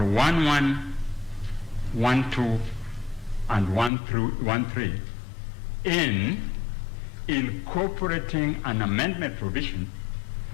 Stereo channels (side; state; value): right; drops out; at 3.9 s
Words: 12, and 13 in incorporating an amendment provision